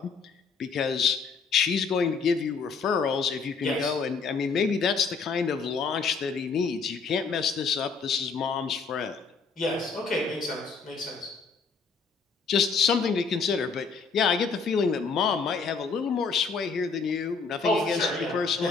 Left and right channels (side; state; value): right; quieter; 5.0 dB